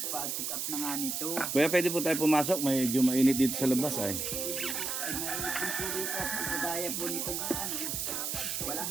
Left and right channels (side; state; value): right; noise; hiss, 2 dB below the sound